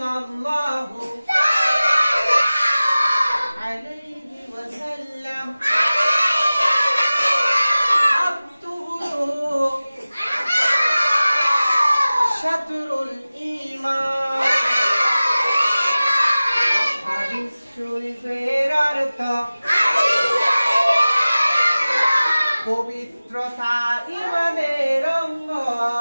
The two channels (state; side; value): inverted; both; correlation -0.97